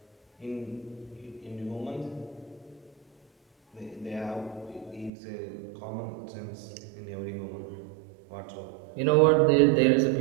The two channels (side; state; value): left; drops out; at 5.1 s